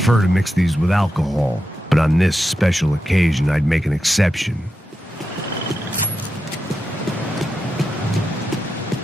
to mix these with alcohol, but on this special occasion I'd make an exception.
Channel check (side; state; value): both; normal; correlation 0.88